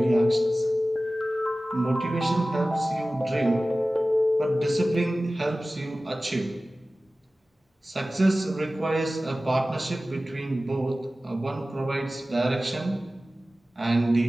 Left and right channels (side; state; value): both; normal; correlation 0.96